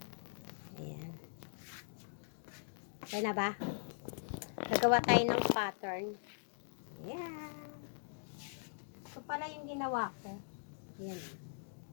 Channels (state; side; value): silent; right; digital silence